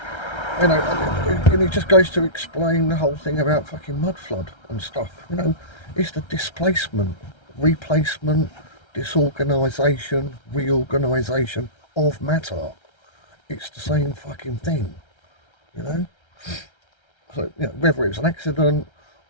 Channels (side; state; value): right; late; 1.3 ms